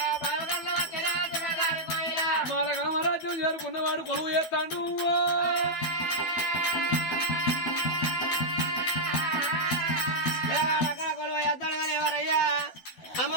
మాలగామరాజ్యం చేరుకున్నవాడు కొలువు చేస్తాడు. కొలువు చేస్తాడు కానీ ఎవరయ్యా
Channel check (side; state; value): right; late; 12 ms